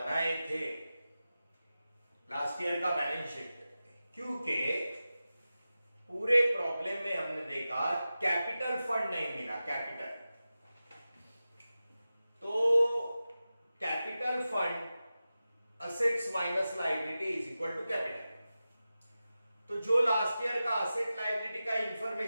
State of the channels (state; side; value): inverted; both; correlation -0.94